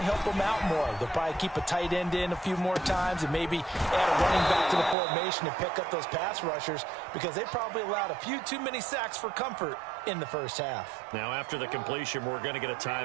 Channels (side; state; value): left; drops out; at 5.0 s